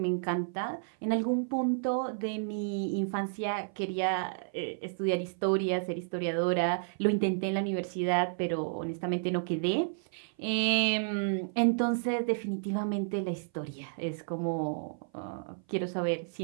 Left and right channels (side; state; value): left; silent; 56 dB below the other